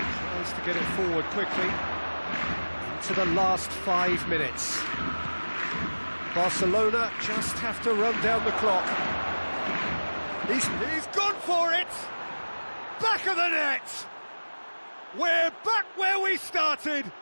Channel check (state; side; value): inverted; both; correlation -1.00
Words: to get it forward quickly. Into the last 5 minutes. Barcelona just have to run down the clock. He's gone for it! Back of the net! We're back where we started.